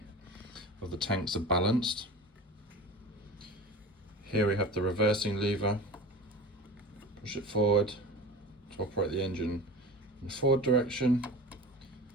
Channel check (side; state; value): both; normal; correlation 0.35